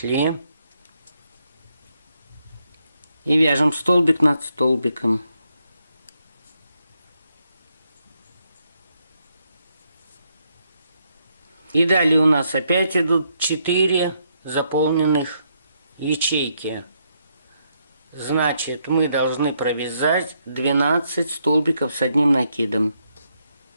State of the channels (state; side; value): inverted; both; correlation -0.77